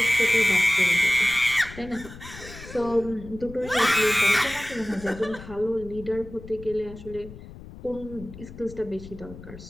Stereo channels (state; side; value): noise; left; rumble, 15 dB below the sound